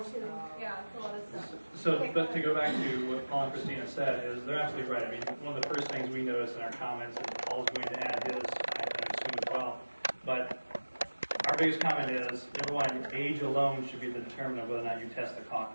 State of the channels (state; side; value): inverted; both; correlation -1.00